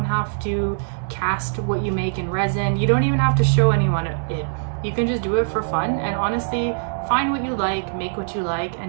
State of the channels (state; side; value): silent; left; digital silence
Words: have to cast what you make in resin. You don't even have to show anyone it. You can just do it for fun, and honestly, find what you like, make what you like,